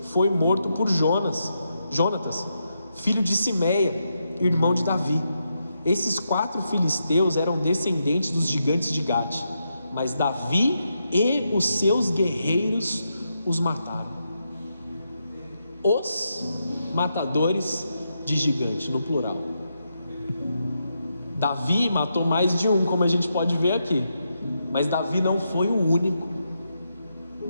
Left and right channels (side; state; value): both; inverted; correlation -0.83